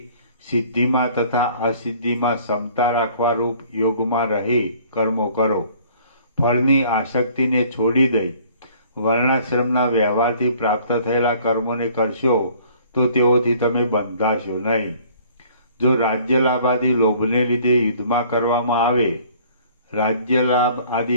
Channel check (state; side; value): inverted; both; correlation -0.55